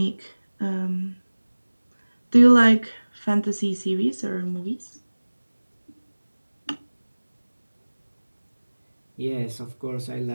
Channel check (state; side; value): inverted; both; correlation -1.00